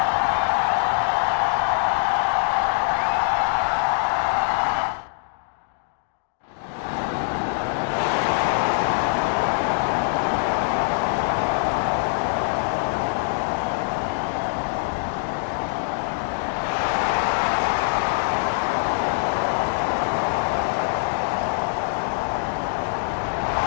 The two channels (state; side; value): silent; right; digital silence